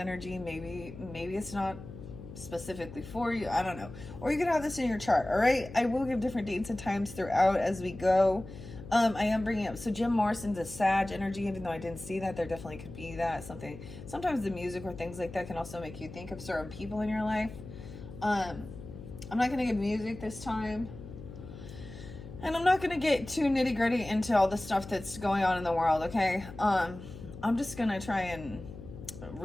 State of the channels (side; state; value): left; noise; hum, 13 dB below the sound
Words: maybe it's not specifically for you, I don't know. Or you could have this in your chart, all right? I will give different dates and times throughout as we go. I am bringing up, so Jim Morrison's a Sag energy, even though I didn't see that, there definitely could be that, something. Sometimes the music or things like that can also make you think of certain people in your life. I'm not going to give music this time. And I'm not going to get too nitty gritty into all the stuff that's going on in the world, okay? I'm just going to try and